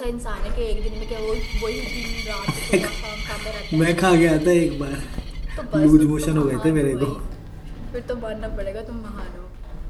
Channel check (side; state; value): both; identical; correlation 1.00